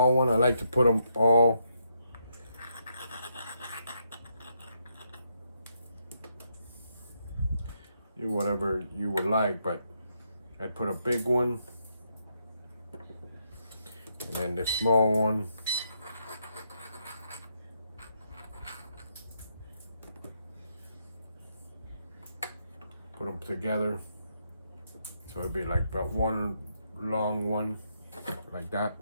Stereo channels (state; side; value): inverted; both; correlation -0.78